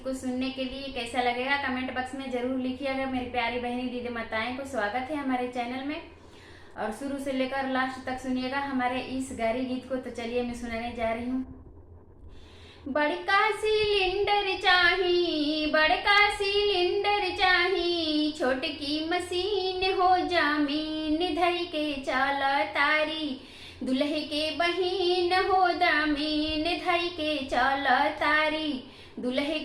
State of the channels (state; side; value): identical; both; correlation 1.00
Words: को सुनने के लिए। कैसा लगेगा कमेंट बॉक्स में जरूर लिखिएगा। मेरी प्यारी बहनी दीदी माताएं को स्वागत है हमारे चैनल में, और शुरू से लेकर लास्ट तक सुनिएगा हमारे इस गारी गीत को। तो चलिए मैं सुनाने जा रही हूँ। बड़का सिलेंडर चाही, बड़का सिलेंडर चाही, छोटकी मशीन हो जामीन धई के चाल तारी, दुल्हे के बहिन हो दामीन धई के चाल तारी, दुल्हे